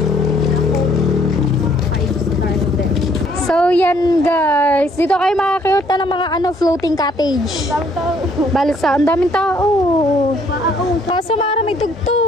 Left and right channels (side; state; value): both; normal; correlation 0.64